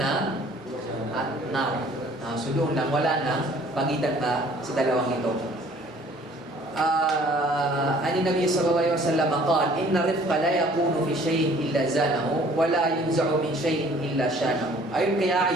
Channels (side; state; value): both; normal; correlation 0.55